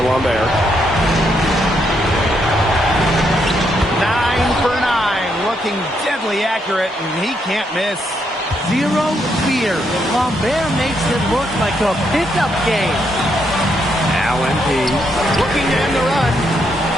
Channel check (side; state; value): both; normal; correlation 0.77